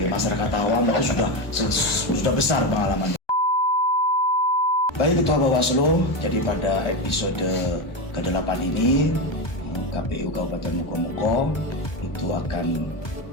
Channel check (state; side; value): late; right; 1.4 ms